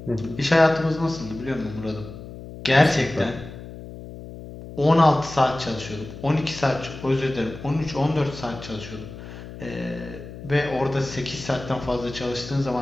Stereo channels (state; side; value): noise; left; hum, 13 dB below the sound